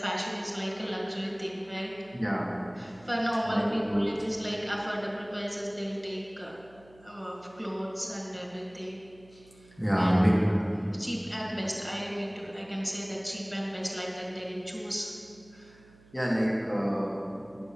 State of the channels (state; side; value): noise; right; hum, 25 dB below the sound